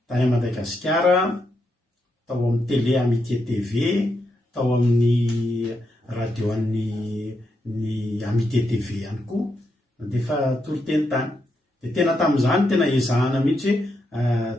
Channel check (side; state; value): both; normal; correlation 0.82